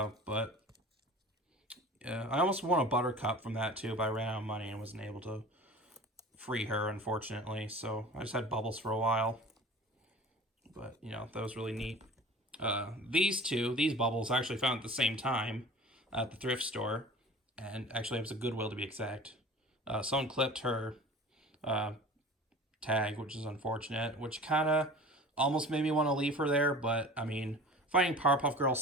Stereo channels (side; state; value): both; normal; correlation 0.40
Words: yeah, I almost won a Buttercup from that too, but I ran out of money and wasn't able to free her, unfortunately. So I just had Bubbles for a while. But, you know, that was really neat. These Bubbles I actually found at the same time at the thrift store. And actually, it was a Goodwill to be exact. Someone clipped her tag, which is unfortunate, which kind of almost made me want to leave her there. But, I mean, finding Powerpuff Girl